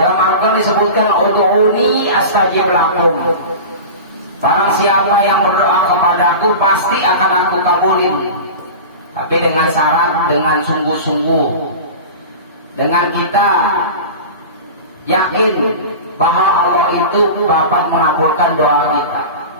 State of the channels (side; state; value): both; inverted; correlation -0.31